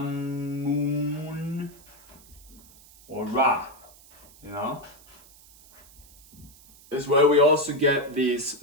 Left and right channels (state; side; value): noise; right; hiss, 24 dB below the sound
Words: or Ra, you know. This is where we also get